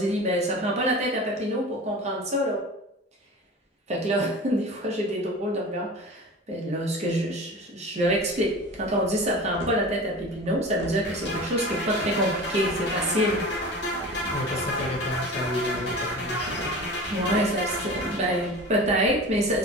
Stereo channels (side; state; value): both; normal; correlation 0.35